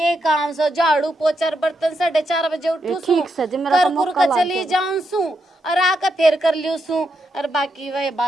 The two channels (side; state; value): both; normal; correlation 0.82